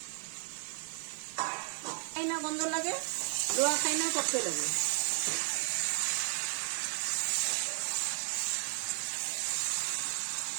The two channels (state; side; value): silent; left; 55 dB below the other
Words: খাই না গন্ধ লাগে, লোয়া খাই না করতে লাগে।